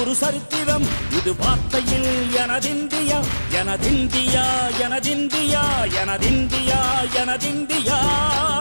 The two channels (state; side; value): inverted; both; correlation -1.00